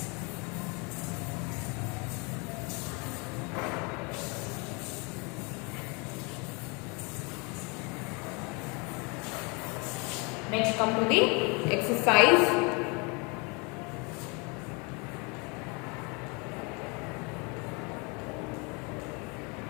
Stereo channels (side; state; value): right; quieter; 30.7 dB